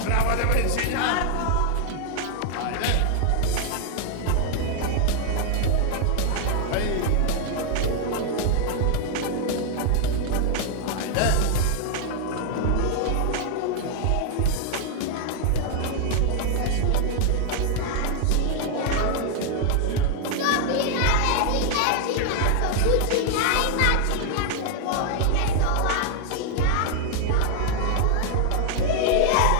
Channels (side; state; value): both; different; correlation 0.00